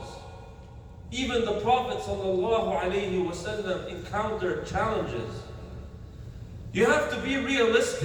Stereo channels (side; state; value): both; identical; correlation 1.00